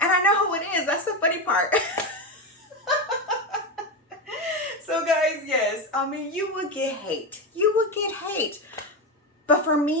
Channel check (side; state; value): both; normal; correlation 0.14